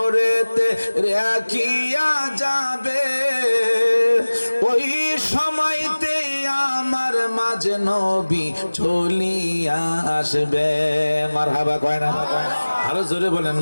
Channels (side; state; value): both; inverted; correlation -1.00